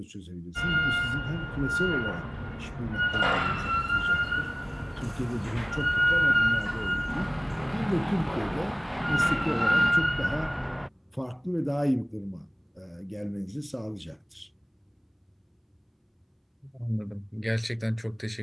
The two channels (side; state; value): both; identical; correlation 1.00